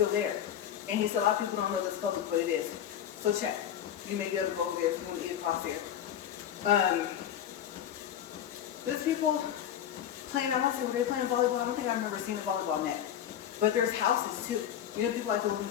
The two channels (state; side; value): quieter; right; 10.1 dB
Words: there. And he said, a lot of people don't know this public, but it is. So check. You may be able to go over there if you want to eat across there. There's people playing, I want to say, were they playing volleyball? I don't think I remember seeing a volleyball net. But there's houses too. You know, people like to live in the